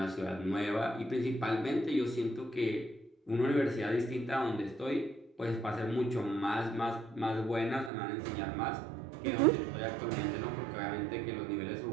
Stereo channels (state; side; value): drops out; left; at 7.9 s